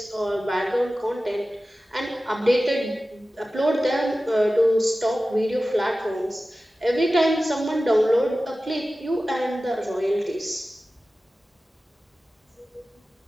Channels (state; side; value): normal; both; correlation 0.95